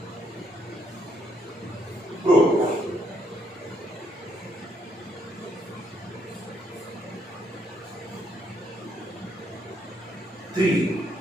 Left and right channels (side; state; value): both; normal; correlation 0.72